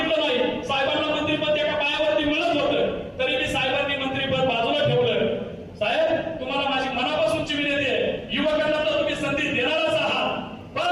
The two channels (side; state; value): both; identical; correlation 1.00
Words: नाही, साहेबांना मंत्रिपद एका पायावरती मिळत होतं, तरी मी साहेबांनी मंत्रिपद बाजूला ठेवलं. साहेब, तुम्हाला माझी मनापासूनची विनंती आहे, युवकांना तर तुम्ही संधी देणारच आहात,